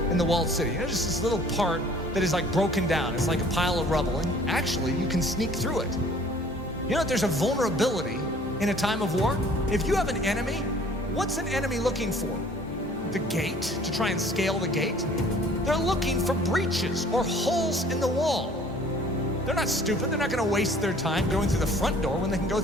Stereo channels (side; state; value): both; normal; correlation 0.53